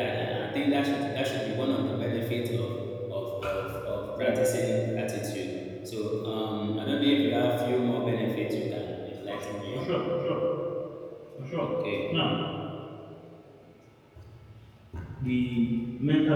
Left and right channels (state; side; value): identical; both; correlation 1.00